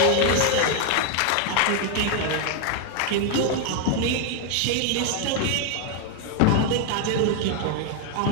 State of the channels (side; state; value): both; different; correlation 0.01